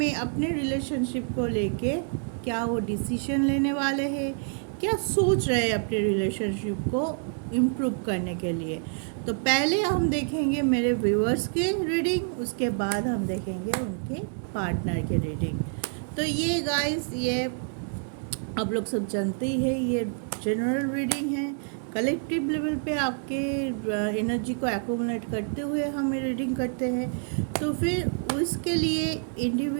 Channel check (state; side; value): silent; left; 60 dB below the other